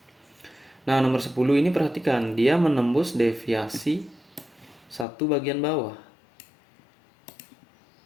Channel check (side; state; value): right; drops out; at 5.1 s